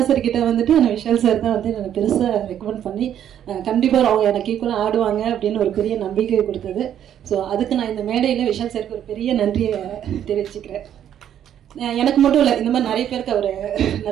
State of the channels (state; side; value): quieter; left; 10.1 dB